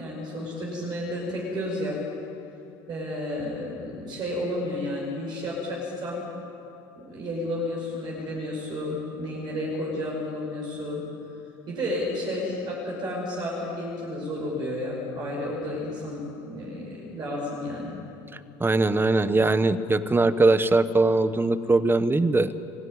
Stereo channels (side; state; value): both; normal; correlation 0.75